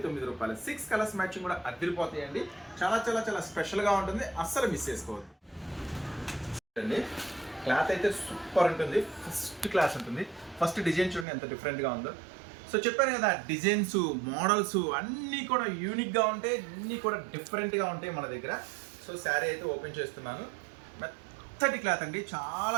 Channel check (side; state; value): left; drops out; at 11.2 s